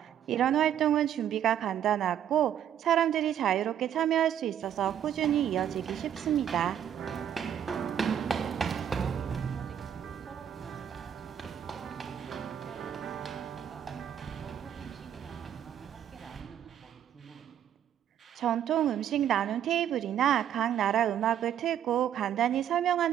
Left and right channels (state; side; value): quieter; left; 9.8 dB